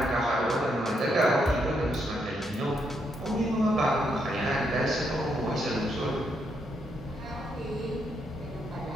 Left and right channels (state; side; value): normal; both; correlation 0.77